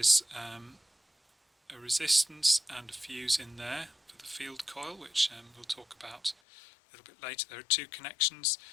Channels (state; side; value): drops out; right; at 6.4 s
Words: a resistance and a fuse in there for the field coil, which we'll talk about a little bit later. There are two connections,